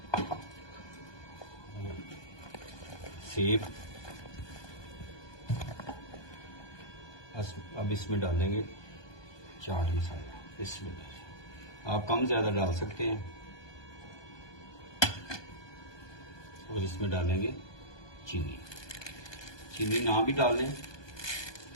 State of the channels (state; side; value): late; right; 1.2 ms